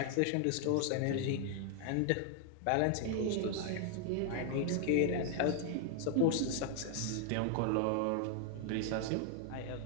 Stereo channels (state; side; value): different; both; correlation 0.00